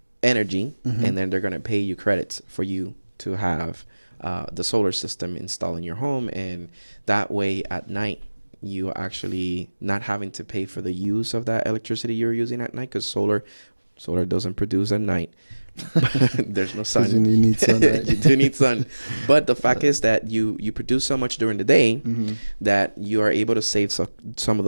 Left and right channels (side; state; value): both; inverted; correlation -1.00